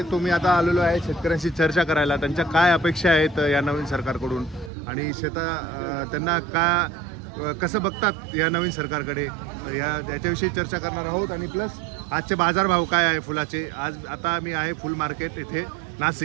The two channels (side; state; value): left; drops out; at 4.7 s